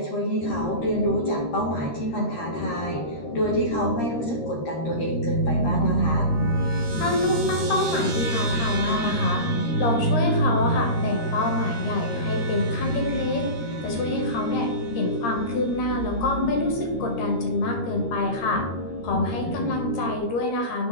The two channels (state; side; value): late; right; 13 ms